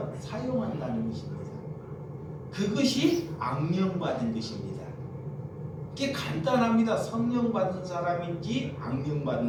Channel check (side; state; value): both; identical; correlation 1.00